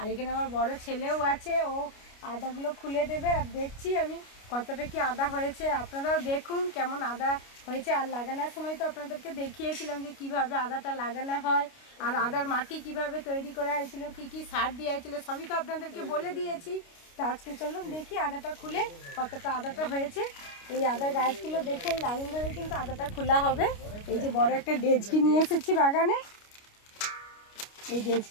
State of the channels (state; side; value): late; right; 29 ms